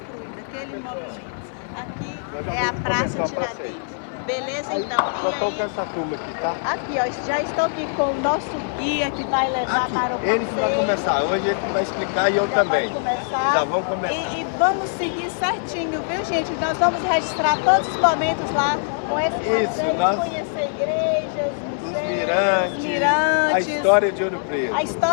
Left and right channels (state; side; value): silent; right; 56 dB below the other